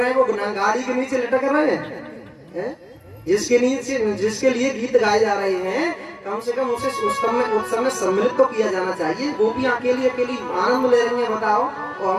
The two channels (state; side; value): identical; both; correlation 1.00